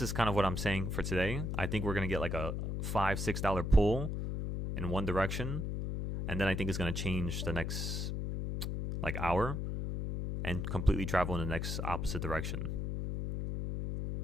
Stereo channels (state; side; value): noise; left; hum, 2 dB below the sound